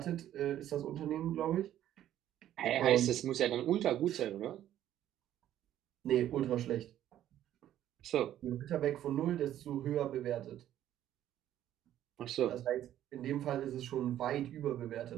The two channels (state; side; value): quieter; left; 12.0 dB